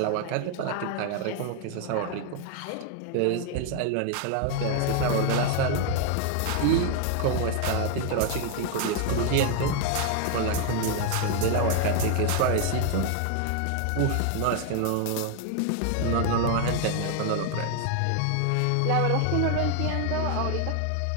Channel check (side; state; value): both; different; correlation 0.01